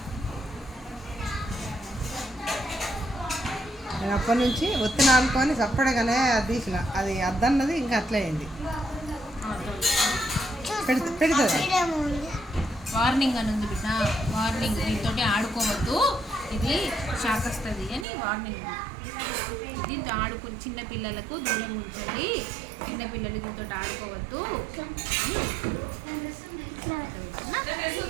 నేను అప్పటి నుంచి ఒత్తిన ఆడుకొని చప్పడగానే అది తీసిన, అది అద్దన్నది ఇంకా అట్లే అయింది. పెడుతుంది వార్నింగ్ అని ఉంది బిడ్డ, వార్నింగ్. దీంతో ఆడుకోవద్దు, ఇది షాక్ వస్తుంది అని వార్నింగ్. దీంతో ఆడుకుని చిన్నపిల్లలకు దూరం ఉంచండి, చిన్నపిల్లలు దీంతో ఆడుకోవద్దు.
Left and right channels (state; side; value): drops out; left; at 18.1 s